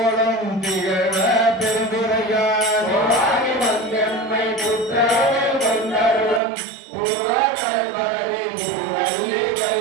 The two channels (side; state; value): left; drops out; at 6.4 s